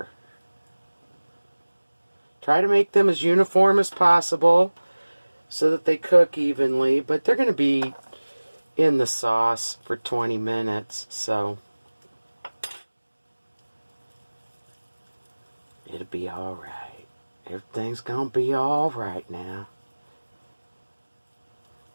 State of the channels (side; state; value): both; inverted; correlation -1.00